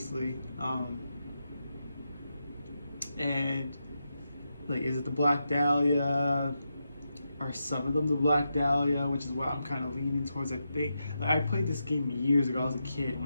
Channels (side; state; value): both; inverted; correlation -0.86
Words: And... Like, is it the Black Dahlia? Are some of them the Black Dahlia? Which is what I'm kind of leaning towards, I think. Like, I played this game years ago. I was a kid